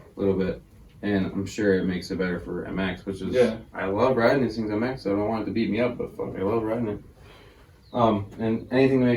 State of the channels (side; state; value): both; identical; correlation 1.00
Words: A little bit. And I'm sure it makes it better for MX, which is, Yeah. I love riding these things MX, so I don't want it to beat me up, but fuck, I love riding it. And anything to